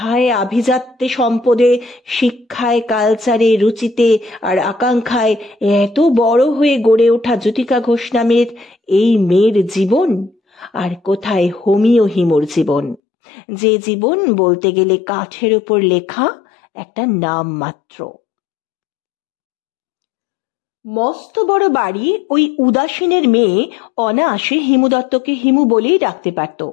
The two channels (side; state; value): right; drops out; at 13.0 s